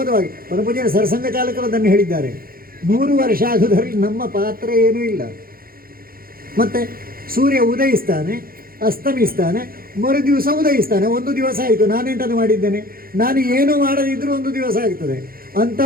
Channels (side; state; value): left; late; 0.42 ms